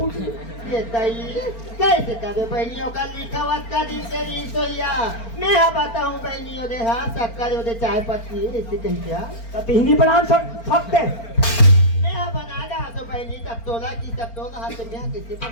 ये तई कैसे करे बहनियों का लिखा हुआ का दिन से नहीं सोया मैं हाँ बताऊं बहनियों दे हाँ शक्कर दे चाय पत्ती ऐसे कहीं क्या कतही बना सकते मैं हाँ बना रहा तो बहनी तब तोला की तब तोला हाथ में यहाँ कैसे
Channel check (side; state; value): right; late; 4.4 ms